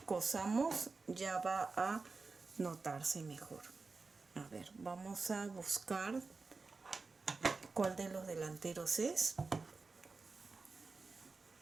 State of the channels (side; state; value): left; quieter; 4.1 dB